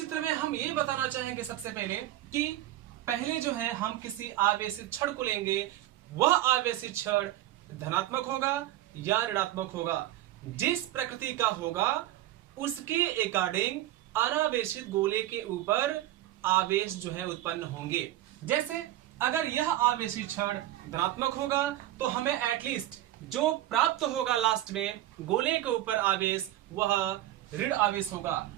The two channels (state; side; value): quieter; left; 14.1 dB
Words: में हम ये बताना चाहेंगे सबसे पहले कि पहले जो है हम किसी आवेशित छड़ को लेंगे, वह आवेशित छड़ धनात्मक होगा या ऋणात्मक होगा। जिस प्रकृति का होगा उसके अकॉर्डिंग अनावेशित गोले के ऊपर आवेश जो है उत्पन्न होंगे। जैसे अगर यह आवेशित छड़ धनात्मक होगा तो हमें एटलीस्ट जो प्राप्त होगा लास्ट में गोले के ऊपर आवेश, वह ऋण आवेश होगा।